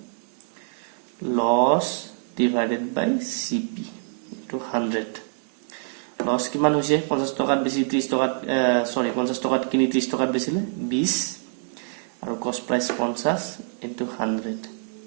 লছ ডিভাইডেড বাই CP × 100। লছ কিমান হৈছে, 50 টকাত বেছি 30 টকাত 50 টকাত কিনি 30 টকাত বেচিলে 20, আৰু কষ্ট প্ৰাইচ 50 × 100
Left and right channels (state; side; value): silent; left; digital silence